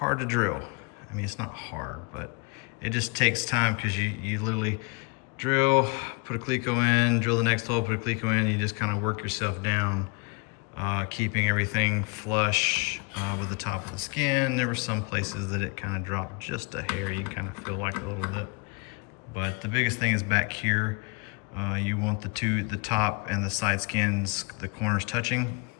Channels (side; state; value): right; quieter; 30.4 dB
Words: to drill. I mean, it's not hard, but it just takes time because you literally drill, put a Cleco in, drill the next hole, put a Cleco in, you just kind of work yourself down, keeping everything flush with the top of the skin. There were some places that it kind of dropped just a hair. You can kind of feel like a little lip. But the biggest thing is back here. You want the top and the side skins, the corners touching.